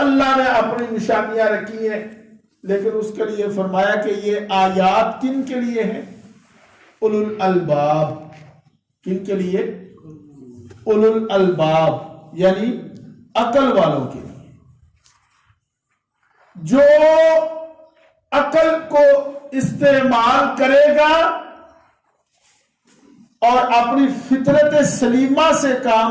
نے اپنی نشانیاں رکھی ہیں، لیکن اس کے لیے فرمایا کہ یہ آیات کن کے لیے ہیں؟ اولو الالباب۔ کن کے لیے؟ اولو الالباب، یعنی عقل والوں کے لیے۔ جو عقل کو استعمال کرے گا اور اپنی فطرت سلیمہ سے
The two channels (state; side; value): identical; both; correlation 1.00